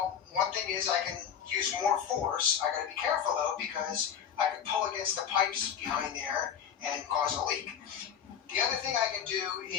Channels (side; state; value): right; quieter; 8.4 dB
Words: one thing is I can use more force. I got to be careful though, because I could pull against the pipes behind there and cause a leak. The other thing I can do